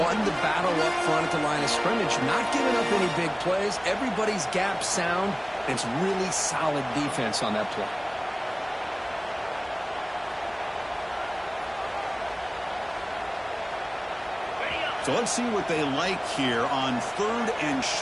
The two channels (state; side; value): identical; both; correlation 1.00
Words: the battle up front at the line of scrimmage, not giving up any big plays. Everybody's gap sound. It's really solid defense on that play. So let's see what they like here on 3rd and